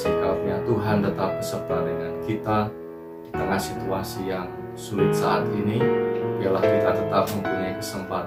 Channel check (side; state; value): both; identical; correlation 1.00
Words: karunia Tuhan tetap beserta dengan kita di tengah situasi yang sulit saat ini. Biarlah kita tetap mempunyai